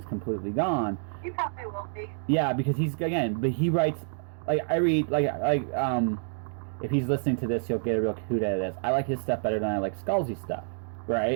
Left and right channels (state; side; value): silent; left; digital silence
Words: completely gone. He probably will be. Yeah, because but he writes like I read if he's listening to this, he'll get a real hoot out of this. I like his stuff better than I like Scalzi's stuff,